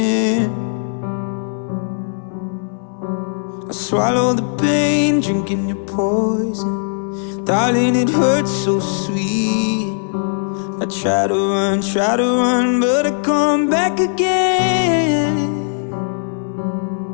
I swallow the pain, drinking your poison. Darling, it hurts so sweet. I try to run, but I come back again.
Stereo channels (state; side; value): silent; right; 67 dB below the other